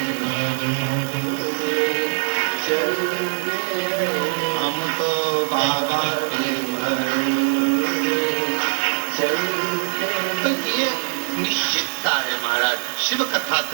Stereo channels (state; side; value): silent; left; digital silence